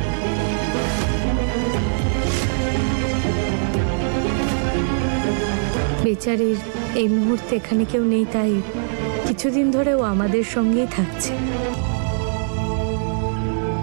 বেচারির এই মুহূর্তে এখানে কেউ নেই, তাই কিছুদিন ধরে ও আমাদের সঙ্গেই থাকছে।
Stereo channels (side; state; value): left; silent; digital silence